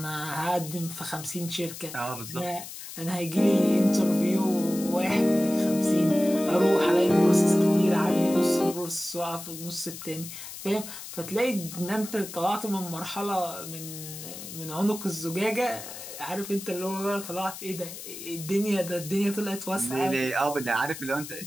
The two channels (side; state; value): left; noise; hiss, 11 dB below the sound